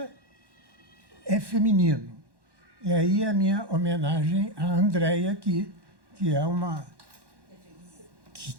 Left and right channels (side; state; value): left; late; 1.1 ms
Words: é feminino. E aí a minha homenagem à Andréia, que é uma...